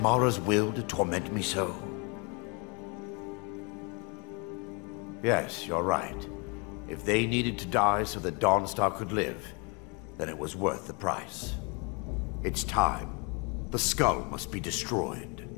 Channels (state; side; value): quieter; right; 32.5 dB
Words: will to torment me so? Yes, you're right. If they needed to die so that Dawnstar could live, then it was worth the price. It's time. The skull must be destroyed.